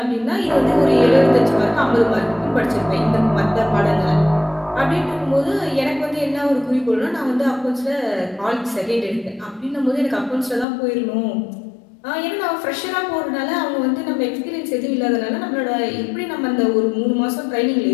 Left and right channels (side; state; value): right; drops out; at 10.7 s